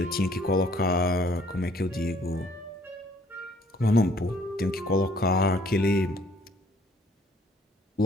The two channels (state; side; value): normal; both; correlation 0.60